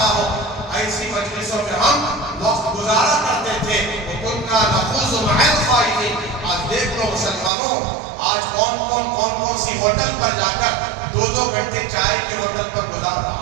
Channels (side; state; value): left; drops out; at 7.5 s